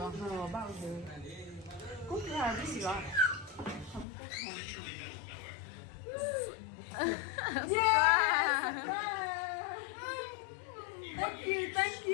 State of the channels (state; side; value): drops out; right; at 4.0 s